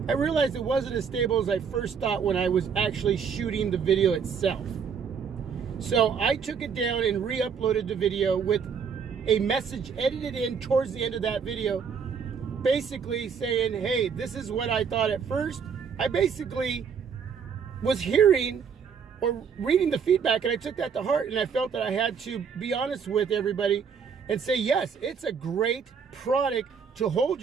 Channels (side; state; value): left; quieter; 6.4 dB